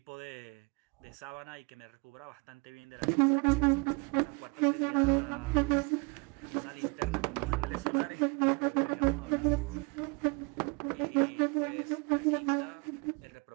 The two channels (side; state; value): left; quieter; 31.6 dB